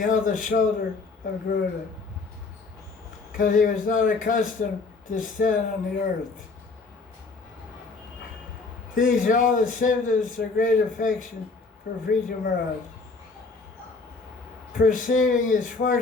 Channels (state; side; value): quieter; right; 4.0 dB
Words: the shoulder of Garuda, because he was not accustomed to stand on the earth. These are all the symptoms of great affection for Prithu Maharaj. Perceiving his